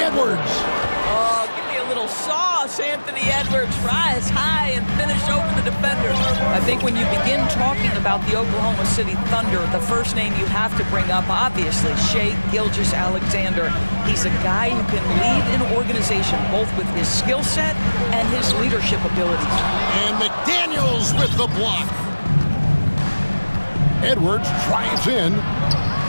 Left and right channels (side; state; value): both; inverted; correlation -1.00